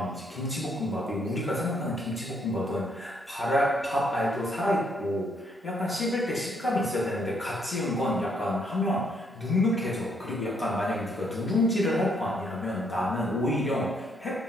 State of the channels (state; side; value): normal; both; correlation 0.71